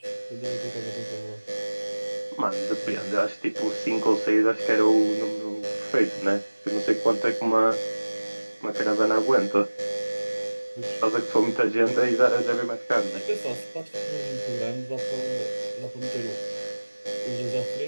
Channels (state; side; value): inverted; both; correlation -1.00